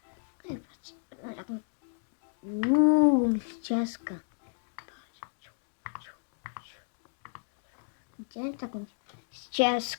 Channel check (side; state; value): right; silent; digital silence